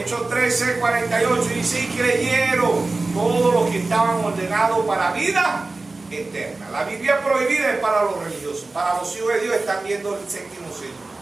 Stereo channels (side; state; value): left; quieter; 3.4 dB